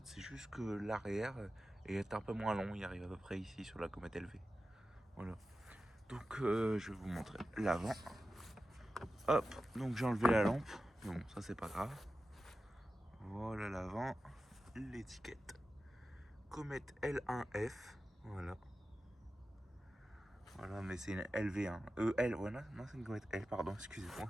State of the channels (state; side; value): normal; both; correlation 0.93